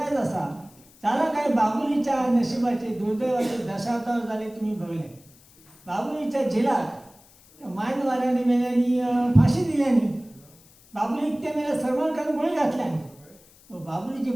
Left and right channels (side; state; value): left; noise; hiss, 27 dB below the sound